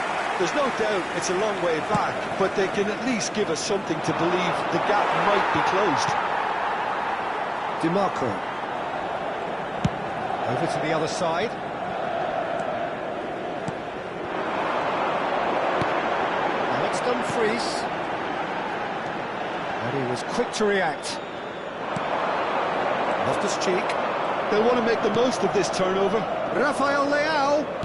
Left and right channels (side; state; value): both; identical; correlation 1.00